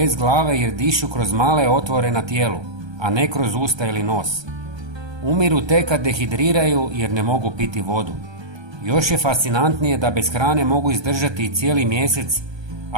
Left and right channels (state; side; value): late; left; 1.3 ms